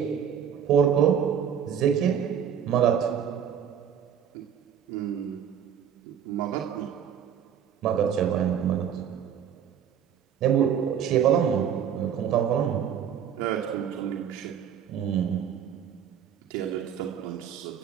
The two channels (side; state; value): left; quieter; 8.5 dB